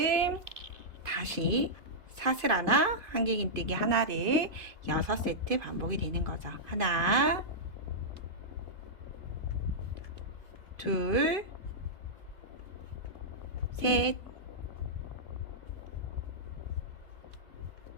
다시 사슬 하나, 한길긴뜨기 하나를 6세트 반복이 되는 거죠. 하나, 둘, 셋,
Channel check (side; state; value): left; late; 2.5 ms